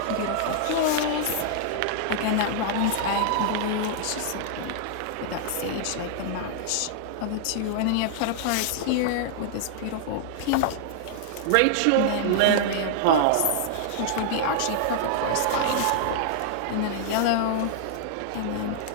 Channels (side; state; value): both; different; correlation -0.01